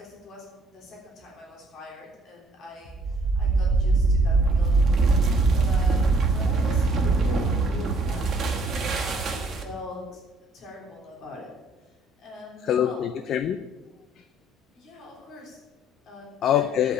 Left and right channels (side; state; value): both; normal; correlation 0.61